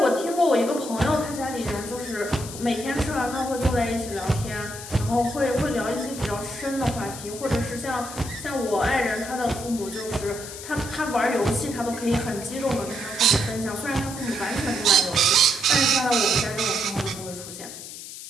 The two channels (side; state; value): left; noise; hiss, 11 dB below the sound